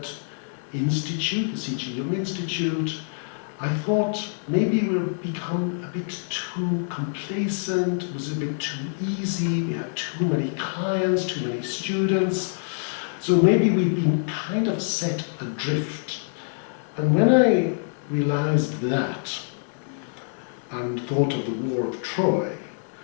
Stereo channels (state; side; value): silent; right; digital silence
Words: institute, the C.G. Jung Institute, I thought maybe we'll become a bit too complacent, it was a bit too easy, we had too many clients, too many students. So maybe we've been kind of set adrift. And when I realized that, and thought of the War of Troy,